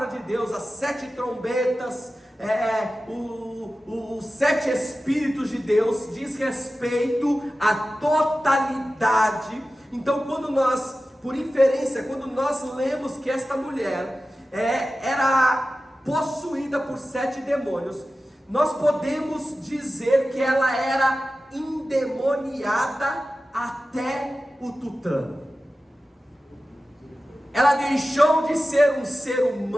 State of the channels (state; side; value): normal; both; correlation 0.94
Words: de Deus as 7 trombetas, os 7 Espíritos de Deus, diz respeito à totalidade. Então, quando nós, por inferência, quando nós lemos que esta mulher era possuída por 7 demônios, nós podemos dizer que ela era endemoniada até o tutano. Ela deixou de ser um ser